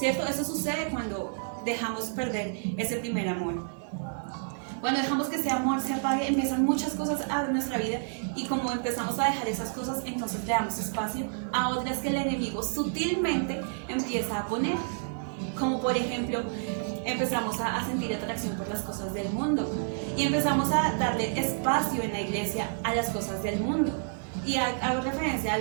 Eso sucede cuando dejamos perder ese primer amor. Cuando dejamos que ese amor se apague, empiezan muchas cosas a nuestra vida y como empezamos a dejar esas cosas, entonces le damos espacio a otras que el enemigo sutilmente empieza a poner. Como por ejemplo, empezamos a sentir atracción por las cosas del mundo y empezamos a darle espacio en la iglesia a las cosas del mundo. Y hago referencia a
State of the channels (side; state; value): left; silent; digital silence